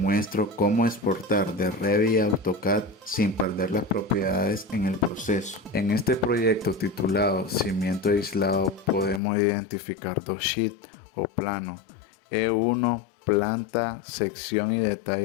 cómo exportar de Revit a AutoCAD sin perder las propiedades en el proceso. En este proyecto titulado Cimiento aislado podemos identificar dos sheets o planos: E1 planta, sección y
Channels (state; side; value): drops out; right; at 9.2 s